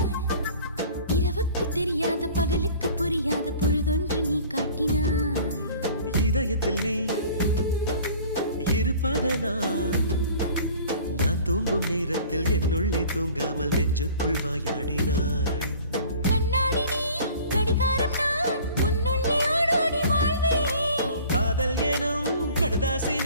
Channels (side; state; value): both; inverted; correlation -0.47